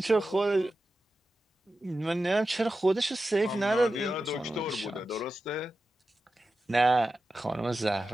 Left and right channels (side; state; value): both; normal; correlation 0.92